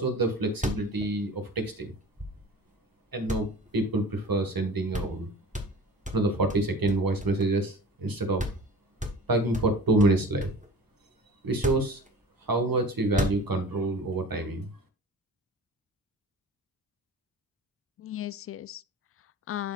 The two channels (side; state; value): both; normal; correlation 0.40